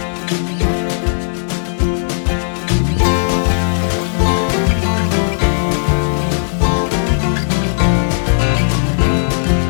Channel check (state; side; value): silent; right; 68 dB below the other